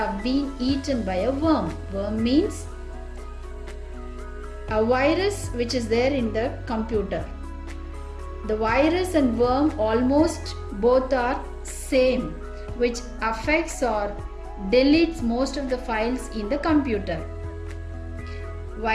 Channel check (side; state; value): both; identical; correlation 1.00